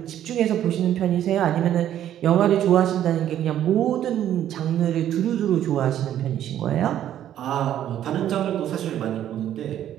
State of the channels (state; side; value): quieter; left; 11.2 dB